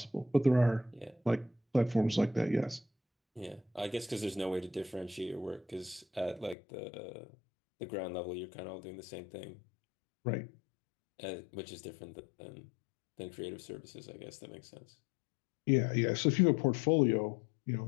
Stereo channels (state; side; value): drops out; right; at 6.6 s